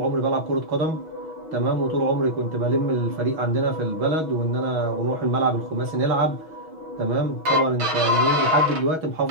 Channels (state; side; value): late; left; 6.2 ms